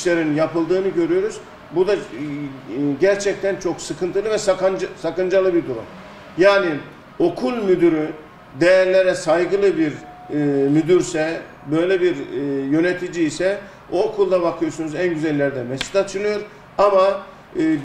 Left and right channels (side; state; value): both; identical; correlation 1.00